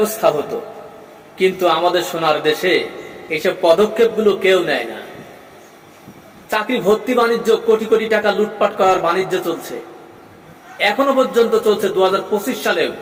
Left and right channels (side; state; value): both; identical; correlation 1.00